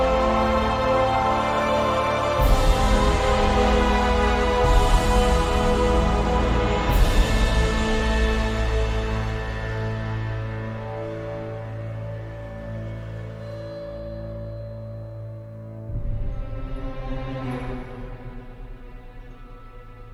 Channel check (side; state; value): both; identical; correlation 1.00